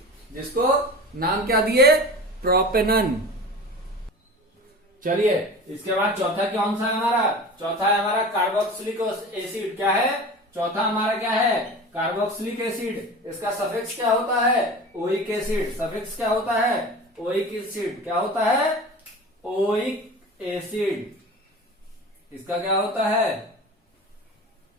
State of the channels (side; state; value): both; normal; correlation 0.35